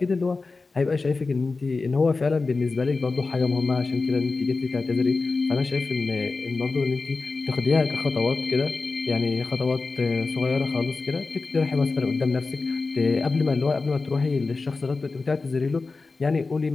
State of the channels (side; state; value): right; quieter; 3.9 dB